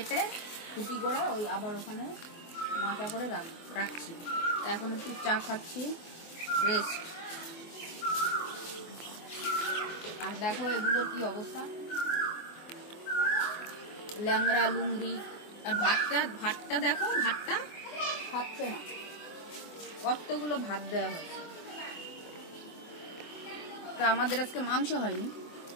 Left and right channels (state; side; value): late; right; 24 ms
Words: খুঁটি করে ওই আবার ওখানে মাচা করে রাখছি। এখন একটু চা খাচ্ছি, রেস্ট। আর দেখো এগুলোর কি অবস্থা, ল্যাংড়া লুংড়ি। আর ভাতটা দেখো, ভাতটা খাচ্ছে না, কতগুলো ভাত দেওয়া হয়েছে। তা আমাদের আজকে মাংস হয়নি,